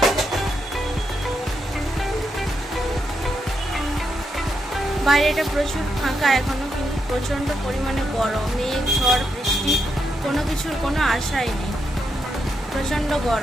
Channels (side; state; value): both; normal; correlation 0.82